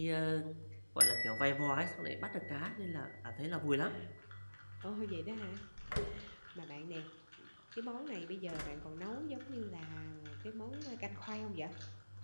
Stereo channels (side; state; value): both; inverted; correlation -1.00